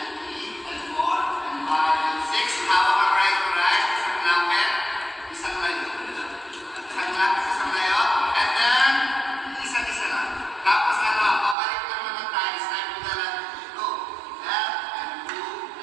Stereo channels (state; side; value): drops out; left; at 11.6 s